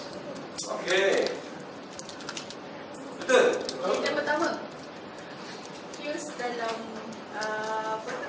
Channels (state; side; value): identical; both; correlation 1.00